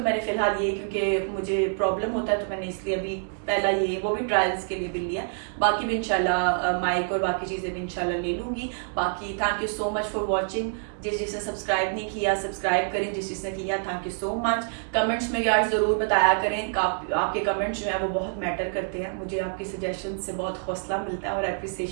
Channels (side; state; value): left; silent; digital silence